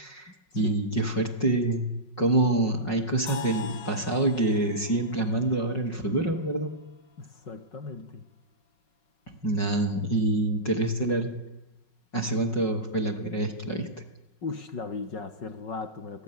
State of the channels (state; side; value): late; right; 5.4 ms